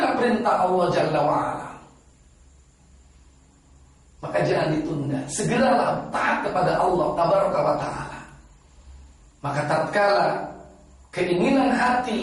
perintah Allah Jalla wa'ala. Maka jangan ditunda, segeralah taat kepada Allah Tabaraka wa ta'ala. Maka tatkala keinginan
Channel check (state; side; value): identical; both; correlation 1.00